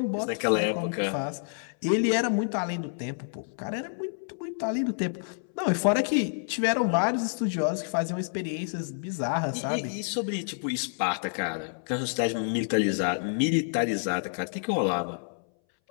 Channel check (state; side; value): silent; right; 59 dB below the other